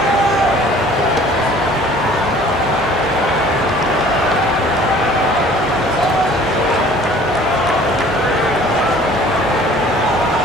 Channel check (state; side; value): normal; both; correlation 0.51